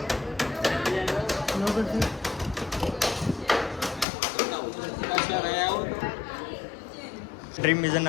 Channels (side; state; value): right; drops out; at 4.0 s